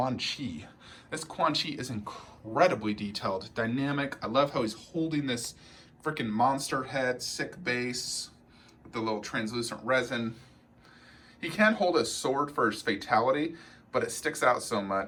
Chi. This Quan Chi is incredibly detailed, dynamic. I love how he's holding this freaking monster head, sick base, with the little translucent resin. He can hold a sword for his fatality, but it sticks out so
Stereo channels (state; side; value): identical; both; correlation 1.00